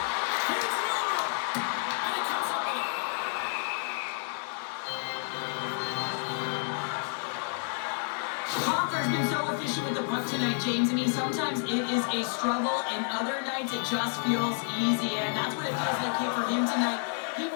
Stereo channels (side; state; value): right; silent; 58 dB below the other